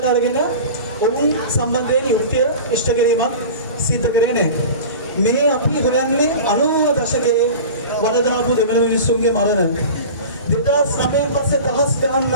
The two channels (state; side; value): inverted; both; correlation -0.35